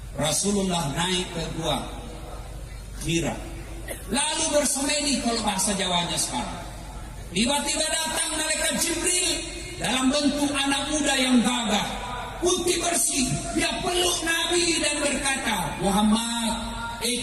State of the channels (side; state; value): both; identical; correlation 1.00